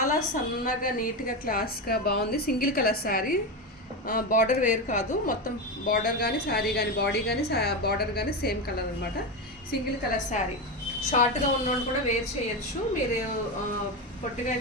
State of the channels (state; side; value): normal; both; correlation 0.16